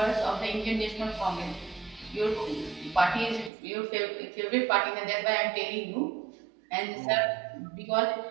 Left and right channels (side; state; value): left; drops out; at 3.5 s